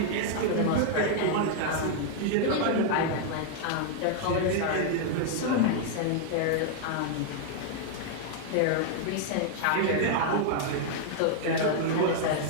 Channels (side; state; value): both; different; correlation -0.01